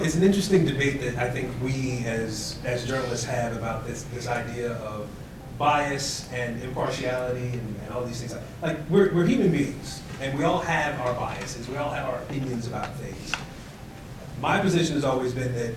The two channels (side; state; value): both; identical; correlation 1.00